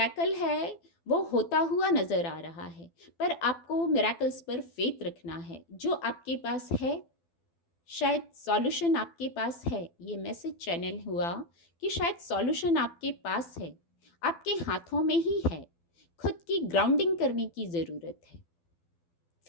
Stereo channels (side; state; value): right; late; 12 ms